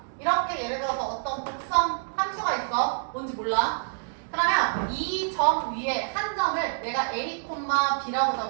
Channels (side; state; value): left; silent; digital silence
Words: 이렇게 예를 들어서 어떤 곡선 함수가 있어. 뭔지 몰라. 그러면 이 점 위에 한 점을 내가 A, B라고